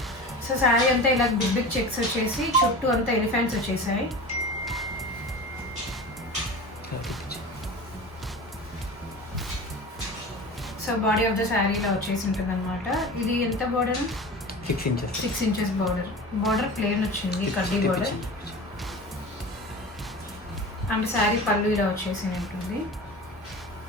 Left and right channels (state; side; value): normal; both; correlation 0.33